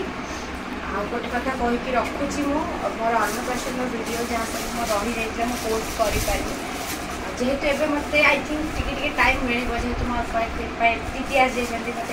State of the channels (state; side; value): identical; both; correlation 1.00